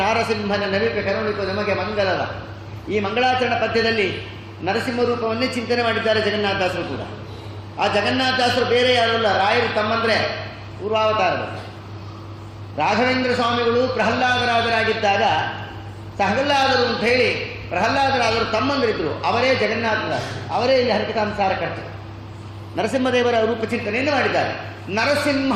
ನಾರಸಿಂಹನ ನವಿಕ ಕರುಣಿಕ ನಮಗೆ ಮಂಗಲದ. ಈ ಮಂಗಳಾಚರಣ ಪದ್ಯದಲ್ಲಿ ನರಸಿಂಹ ರೂಪವನ್ನೇ ಚಿಂತನೆ ಮಾಡಿದ್ದಾರೆ ಜಗನ್ನಾಥದಾಸರು ಕೂಡ. ಆ ಜಗನ್ನಾಥದಾಸರು ಬೇರೆ ಯಾರಲ್ಲ, ರಾಯರು ತಮ್ಮಂದರೆ ಪೂರ್ವಾವತಾರದಲ್ಲಿ. ರಾಘವೇಂದ್ರ ಸ್ವಾಮಿಗಳು ಪ್ರಹ್ಲಾದರಾಜರಾಗಿದ್ದಾಗ ಸಹಲ್ಲಾದರು ಅಂತ ಹೇಳಿ ಪ್ರಹ್ಲಾದರಾಜರು ತಮ್ಮಂದರಿದ್ದರು. ಅವರೇ ಜಗನ್ನಾಥದಾಸರು, ಅವರೇ ಇಲ್ಲಿ ಹರಿಕಥಾಂಸಾರ ಕರ್ತರು. ನರಸಿಂಹದೇವರ ರೂಪ ಚಿಂತನೆಯನ್ನು ಮಾಡಿದ್ದಾರೆ.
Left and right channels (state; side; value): identical; both; correlation 1.00